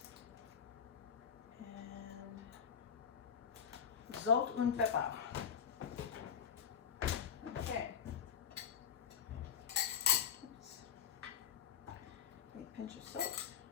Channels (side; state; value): right; quieter; 7.7 dB